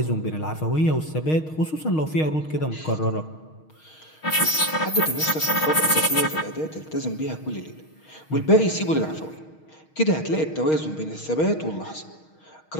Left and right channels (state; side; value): late; right; 6.4 ms